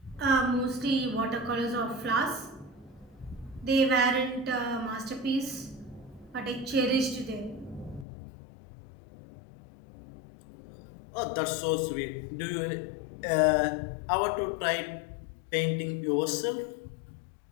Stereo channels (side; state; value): right; drops out; at 8.1 s